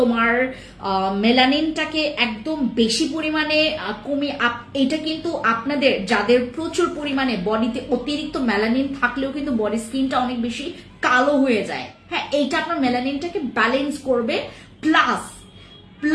মেলানিনটাকে একদম বেশি পরিমাণে কমিয়ে, এটা কিন্তু আপনাদের যাদের প্রচুর পরিমাণে বডিতে অতিরিক্ত মেলানিন থাকলেও কিন্তু বডি স্কিনটা অনেক বেশি কালো হয়ে যায়। হ্যাঁ, এইটা আপনার মেলানিনটাকে ব্যালেন্স করবে,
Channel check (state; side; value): identical; both; correlation 1.00